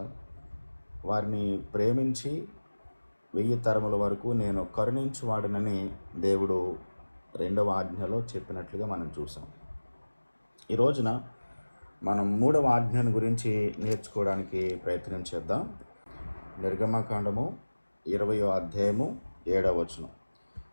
వారిని ప్రేమించి 1000 తరముల వరకు నేను కరుణించువాడనని దేవుడు రెండవ ఆజ్ఞలో చెప్పినట్లుగా మనం చూసాం. ఈ రోజున మనం మూడవ ఆజ్ఞను గురించి నేర్చుకోవడానికి ప్రయత్నం చేద్దాం. నిర్గమకాండము 20వ అధ్యాయము 7వ వచనం.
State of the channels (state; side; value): inverted; both; correlation -1.00